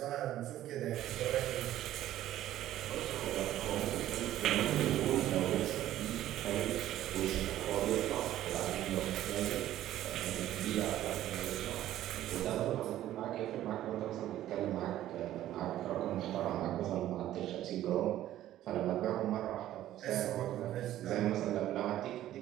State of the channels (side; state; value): left; quieter; 13.2 dB